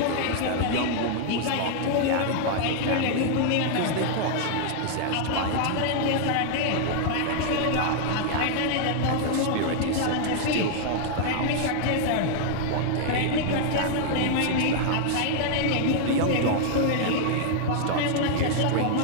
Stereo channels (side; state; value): both; different; correlation 0.00